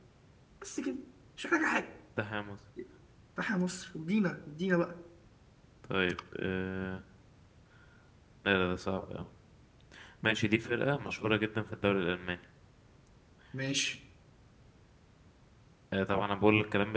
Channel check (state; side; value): identical; both; correlation 1.00